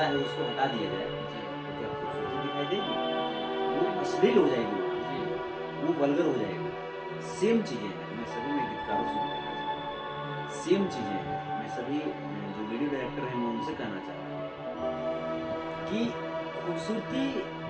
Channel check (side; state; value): both; identical; correlation 1.00